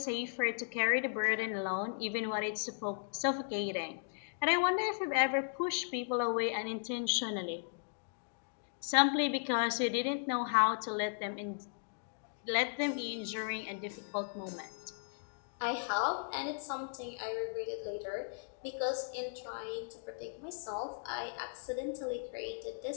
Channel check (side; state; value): right; silent; digital silence